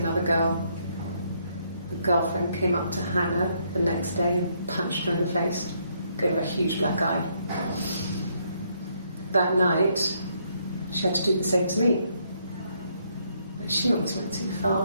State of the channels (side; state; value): both; inverted; correlation -0.72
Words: girl. The girlfriend came up to Hannah the next day and punched her in the face, gave her a huge black eye. That night, she had to do the same to me. But she almost went too